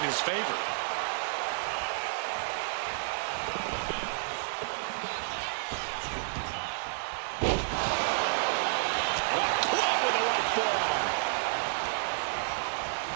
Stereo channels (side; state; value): left; silent; digital silence